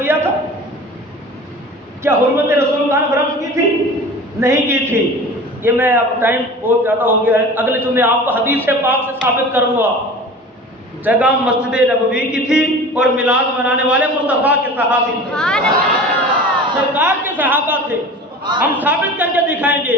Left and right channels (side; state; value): both; normal; correlation 0.38